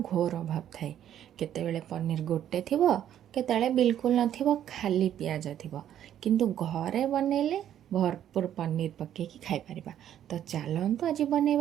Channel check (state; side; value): quieter; left; 10.7 dB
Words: अभाव थाए। केतेबेले पनीर गोटे थिबो, केतेबेले बिल्कुल नथिबो, खाली पियाज थिबो। किंतु घरे बनेले भरपूर पनीर पकेकी खाई परिबा। तो चलतु आज